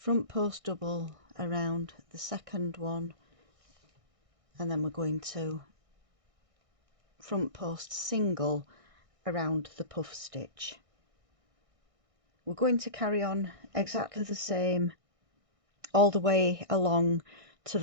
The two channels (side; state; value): left; late; 1.6 ms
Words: post double around the second one, and then we're going to front post single around the puff stitch. We're going to carry on exactly the same all the way along to